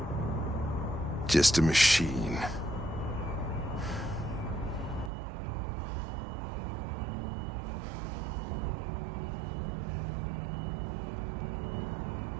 Just a machine.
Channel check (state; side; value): drops out; left; at 5.1 s